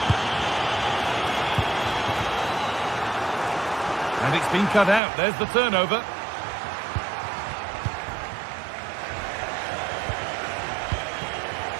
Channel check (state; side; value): drops out; left; at 5.0 s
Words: And it's been cut out. There's the turnover.